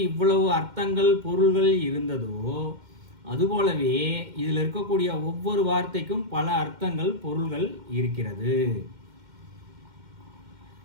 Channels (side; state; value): left; late; 2.1 ms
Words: இவ்வளவு அர்த்தங்கள் பொருள்கள் இருந்ததோ அதுபோலவே இதில் இருக்கக்கூடிய ஒவ்வொரு வார்த்தைக்கும் பல அர்த்தங்கள் பொருள்கள் இருக்கிறது.